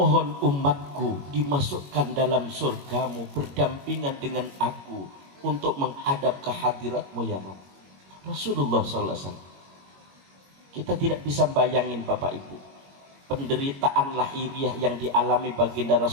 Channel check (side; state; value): left; late; 21 ms